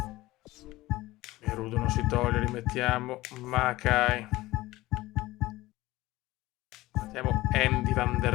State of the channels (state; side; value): quieter; right; 18.1 dB